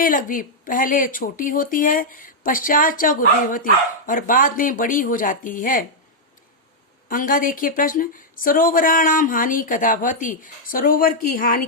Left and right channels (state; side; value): normal; both; correlation -0.05